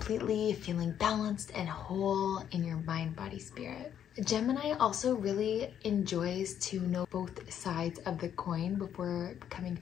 feeling balanced and whole in your mind, body, spirit. Gemini also really enjoys to know both sides of the coin before coming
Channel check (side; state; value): right; quieter; 9.5 dB